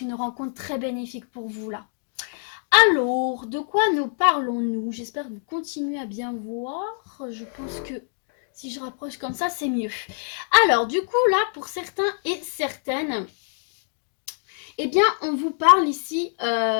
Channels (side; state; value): right; silent; digital silence